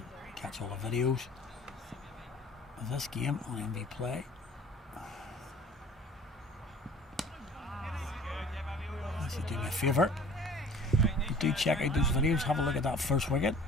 catch all the videos of this game on MV Play. If you do me a favour, do check out those videos, have a look at that first wicket.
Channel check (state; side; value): normal; both; correlation 0.48